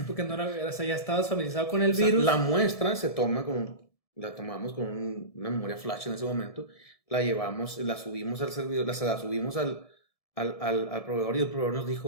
porque no era, o sea, ya estabas familiarizado con el O sea, virus. la muestra la tomamos con una memoria flash en ese momento, la llevamos, la subimos al servidor, la subimos al proveedor, y el proveedor nos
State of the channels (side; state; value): right; late; 1.7 ms